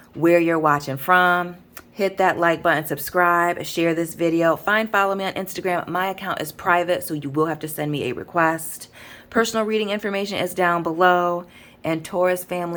where you're watching from. Hit that like button, subscribe, share this video. Follow me on Instagram. My account is private, so you will have to send me a request. Personal reading information is down below. And Taurus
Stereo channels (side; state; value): both; identical; correlation 1.00